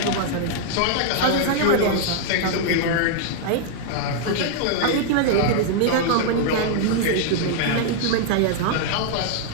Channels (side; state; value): both; different; correlation -0.01